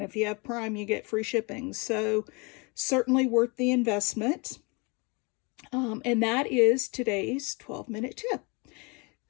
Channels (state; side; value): quieter; right; 29.7 dB